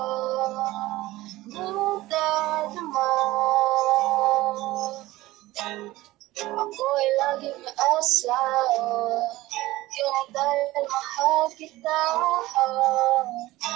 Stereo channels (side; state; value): left; quieter; 17.9 dB